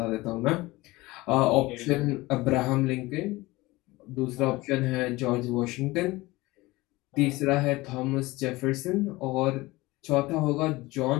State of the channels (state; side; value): quieter; right; 20.6 dB